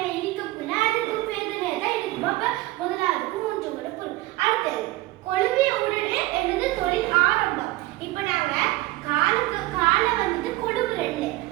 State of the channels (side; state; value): left; quieter; 19.3 dB